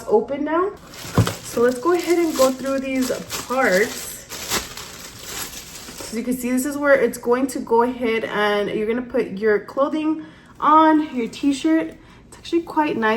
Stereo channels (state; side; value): identical; both; correlation 1.00